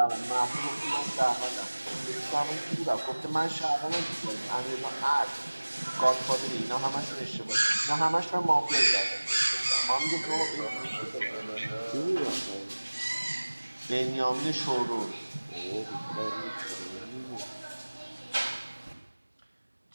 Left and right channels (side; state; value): both; inverted; correlation -1.00